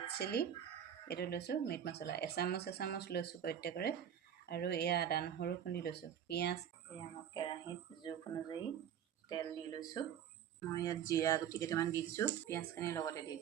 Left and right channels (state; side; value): quieter; left; 9.3 dB